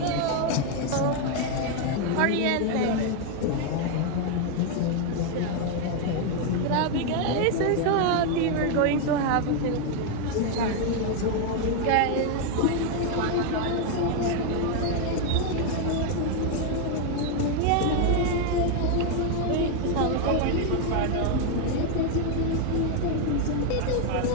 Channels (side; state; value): both; different; correlation 0.01